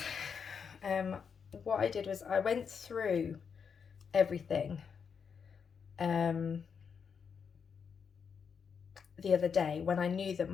what I did was I went through everything the other day when I knew that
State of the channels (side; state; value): right; quieter; 6.4 dB